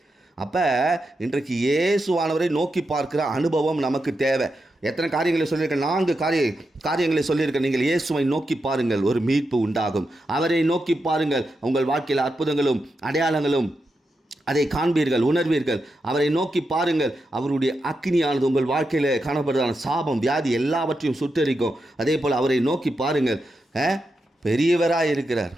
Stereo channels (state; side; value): normal; both; correlation 0.87